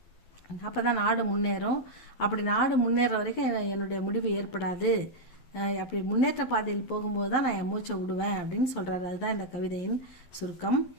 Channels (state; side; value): late; right; 11 ms